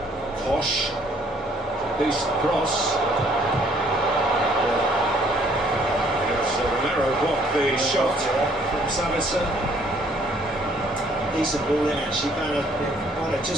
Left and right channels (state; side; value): normal; both; correlation 0.62